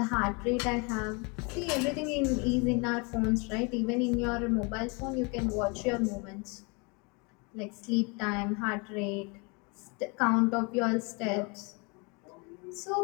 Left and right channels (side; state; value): right; quieter; 31.1 dB